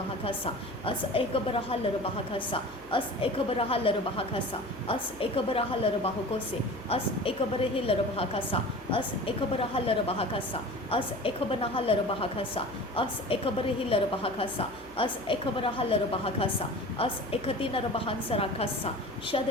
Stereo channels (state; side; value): noise; left; hum, 23 dB below the sound